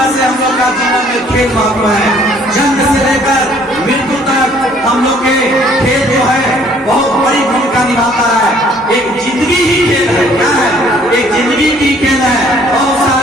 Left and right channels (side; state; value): both; normal; correlation 0.60